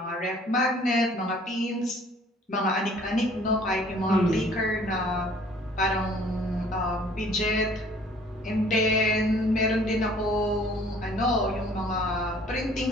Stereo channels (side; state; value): both; normal; correlation 0.55